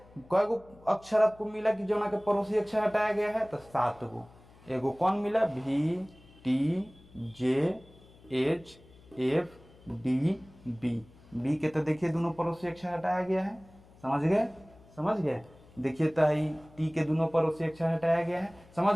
कई गो अक्षर आपको मिला कि जो ना के पड़ोसी अक्षर हटाया गया है, तो 7 गो। एगो कौन मिला, भी, T, J, H, F, D, B. B के तो देखिए दोनों पड़ोसी अक्षर हटाया गया है। समझ गए। देखिए तो टी के दोनों पड़ोसी अक्षर हटाया गया है। समझ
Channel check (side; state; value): left; noise; hum, 25 dB below the sound